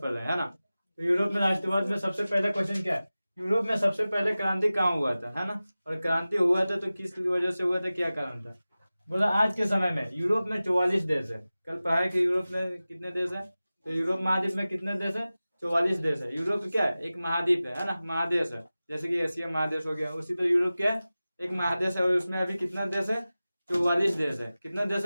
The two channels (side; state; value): both; inverted; correlation -0.96